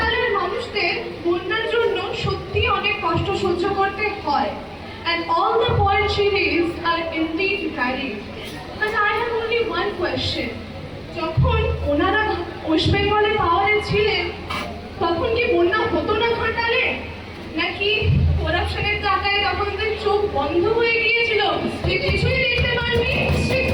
মানুষদের বন্যার জন্য সত্যি অনেক কষ্ট সহ্য করতে হয়, and all the points she raised are indeed valid. But I have only one question. যখন ওনারা ওয়েস্ট বেঙ্গলে পাওয়ারে ছিলেন তখন কি বন্যা হতো না ঘাটালে, নাকি করাপশনের টাকায় তখন ওদের চোখ বন্ধ হয়ে গিয়েছিল, তুই কিছুই দেখতে পারবি?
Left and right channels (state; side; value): identical; both; correlation 1.00